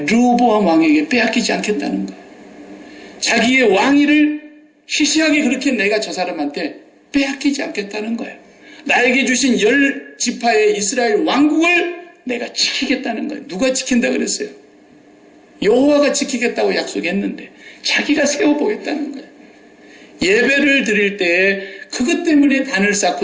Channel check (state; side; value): identical; both; correlation 1.00